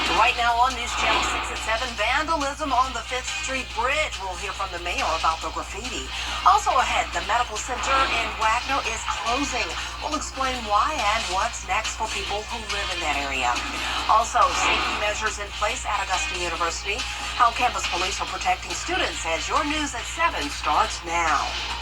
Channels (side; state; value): both; identical; correlation 1.00